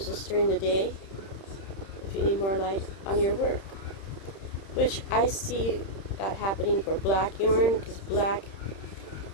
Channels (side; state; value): right; late; 31 ms